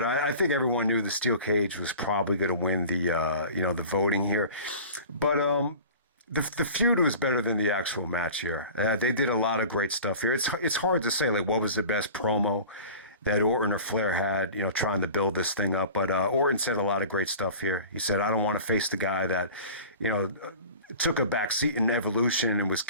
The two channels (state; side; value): inverted; both; correlation -0.40